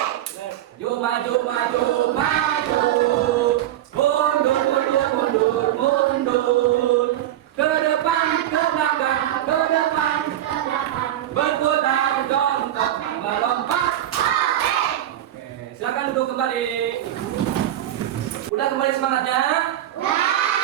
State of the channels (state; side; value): quieter; left; 12.6 dB